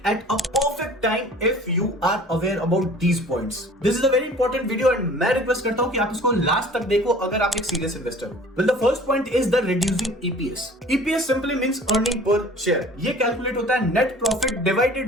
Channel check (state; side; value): normal; both; correlation 0.47